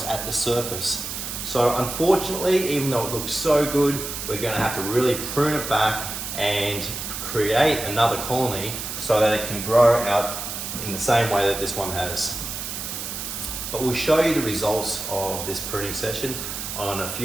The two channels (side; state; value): right; noise; hiss, 6 dB below the sound